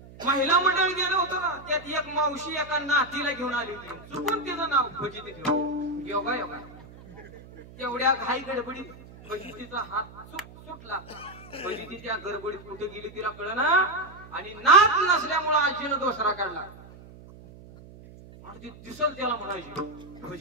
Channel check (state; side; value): noise; right; hum, 19 dB below the sound